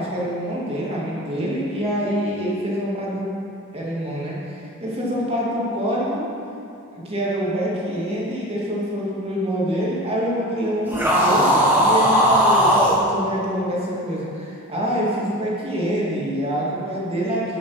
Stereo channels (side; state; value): both; normal; correlation 0.33